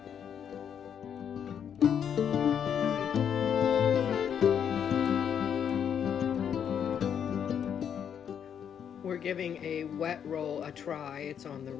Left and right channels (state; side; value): quieter; right; 8.4 dB